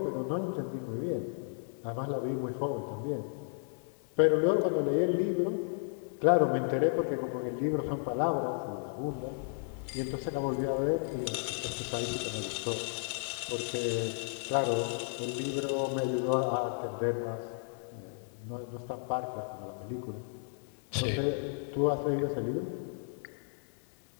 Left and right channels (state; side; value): silent; right; 56 dB below the other